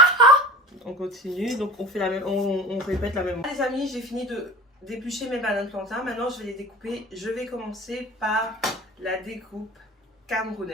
on continue, donc on fait la même, on répète la même. Les amis, j'ai fini d'éplucher mes bananes plantains. Maintenant, je vais les découper. Je vais commencer par la découpe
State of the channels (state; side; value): normal; both; correlation 0.36